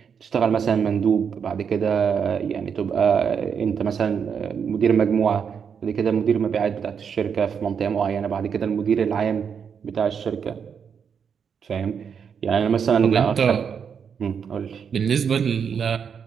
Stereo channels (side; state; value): left; quieter; 7.0 dB